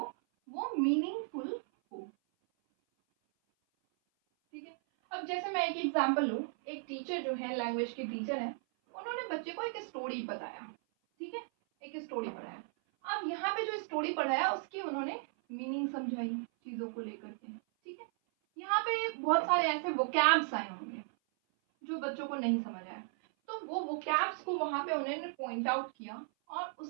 वो मीनिंगफुल हो, ठीक है। अब जैसे मैं एक एग्जांपल लूँ, एक टीचर जो है लैंग्वेज के टीचर है, उन्होंने बच्चे को एक स्टोरी बताया, ठीक है, एक स्टोरी पढ़ाया। अब यहाँ पे जो स्टोरी पढ़ाया उसकी उन्होंने मीनिंग समझाई चीजों को लेकर के, ठीक है। यहाँ पे बहुत सारे ऐसे वोकैब्स आए होंगे जो बच्चों को नहीं समझ आया, तो वो वोकैब्स को वहां पे उन्होंने पॉइंट आउट किया और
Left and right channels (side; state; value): left; silent; 54 dB below the other